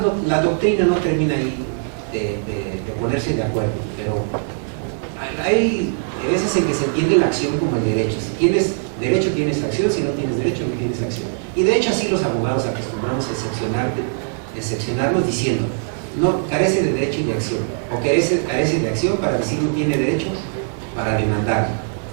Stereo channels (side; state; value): left; silent; digital silence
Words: la doctrina no termina ahí de ponerse de acuerdo, pero hay veces en que se entiende la acción como el derecho. Si tienes derecho, tienes acción; si no tienes derecho, no tienes acción. Y de hecho así los abogados acostumbramos a excepcionarnos diciendo, no, carece de derecho y de acción, o carece de acción para decir no tiene derecho para demandar,